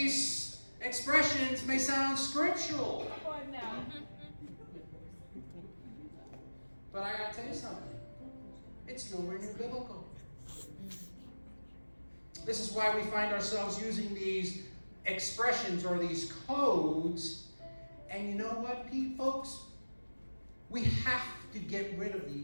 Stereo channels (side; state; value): both; inverted; correlation -1.00